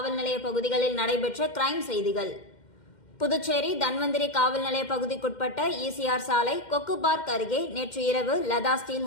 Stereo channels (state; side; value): late; right; 2.1 ms